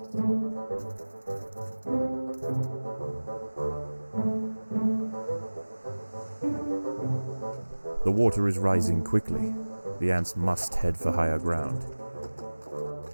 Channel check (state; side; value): inverted; both; correlation -1.00